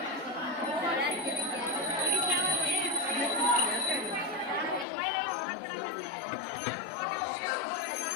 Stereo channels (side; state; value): right; drops out; at 4.9 s